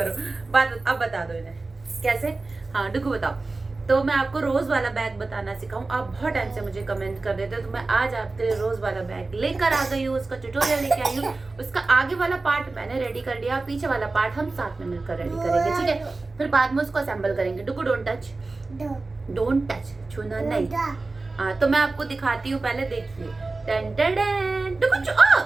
बात, अब बता दो इन्हें कैसे। हाँ डुगू बताओ। तो मैं आपको रोज वाला बैग बताना सिखाऊं। आप बहुत टाइम से मुझे कमेंट कर रहे थे, तो मैं आज आपके लिए रोज वाला बैग लेकर आ गई हूँ। उसका ट्यूटोरियल लेके आई हूँ। उसका आगे वाला पार्ट मैंने रेडी कर लिया, पीछे वाला पार्ट हम साथ में मिलकर रेडी करेंगे, ठीक है। फिर बाद में उसको असेंबल करेंगे। डुगू डोंट टच, डोंट टच, छूना नहीं। हाँ तो मैं आपको दिखाती हूँ, पहले देखिए। टन टन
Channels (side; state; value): left; quieter; 3.5 dB